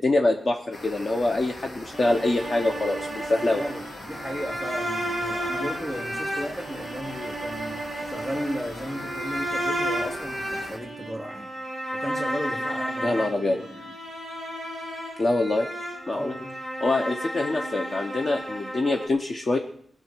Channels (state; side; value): normal; both; correlation 0.91